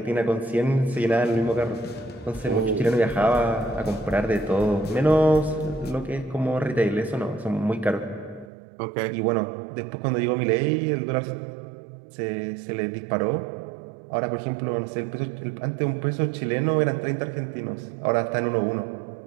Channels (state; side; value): drops out; left; at 8.5 s